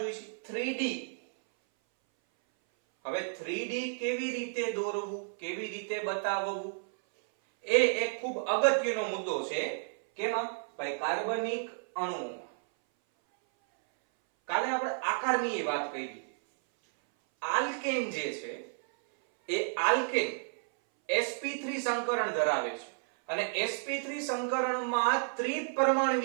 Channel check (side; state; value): left; silent; 57 dB below the other